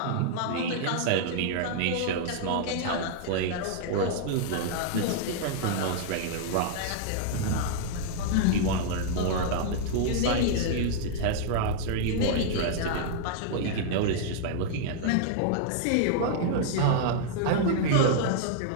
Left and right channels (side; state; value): both; different; correlation -0.01